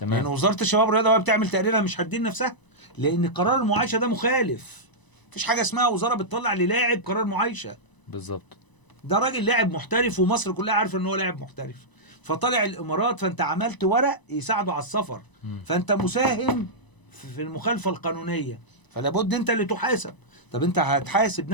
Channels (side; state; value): right; late; 1.0 ms